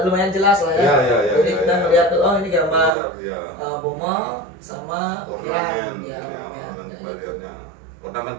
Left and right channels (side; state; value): left; drops out; at 3.0 s